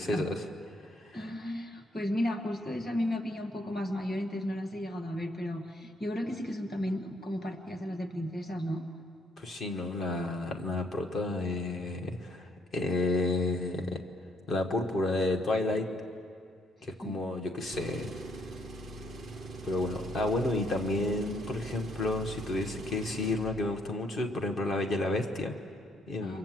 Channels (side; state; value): both; normal; correlation 0.70